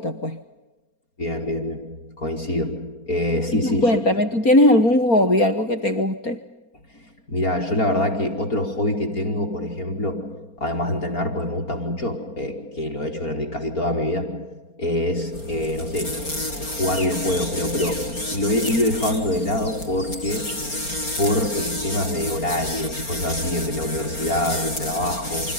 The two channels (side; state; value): right; late; 4.3 ms